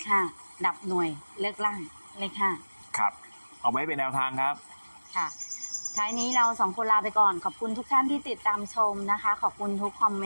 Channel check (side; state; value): both; inverted; correlation -1.00